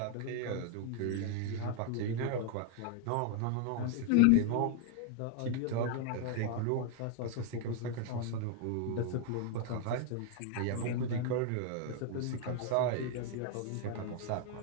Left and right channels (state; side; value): different; both; correlation 0.00